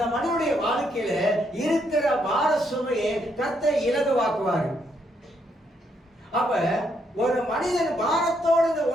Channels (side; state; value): both; normal; correlation 0.75